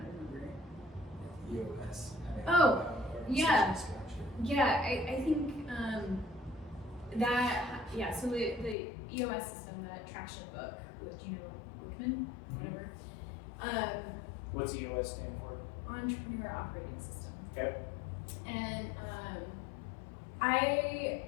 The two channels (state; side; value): drops out; right; at 8.8 s